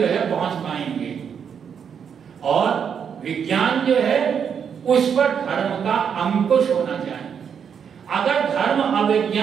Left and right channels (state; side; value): quieter; left; 7.4 dB